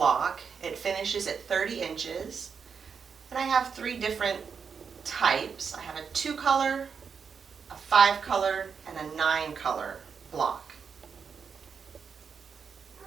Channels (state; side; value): quieter; left; 6.2 dB